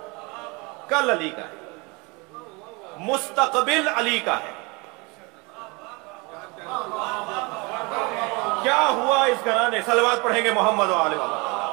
کل علی کا ہے, مستقبل علی کا ہے. کیا ہوا اس گھرانے, صلوات پڑھیں گے محمد و آل محمد.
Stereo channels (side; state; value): left; quieter; 27.5 dB